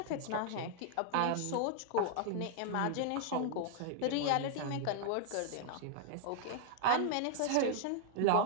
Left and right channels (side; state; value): both; different; correlation -0.01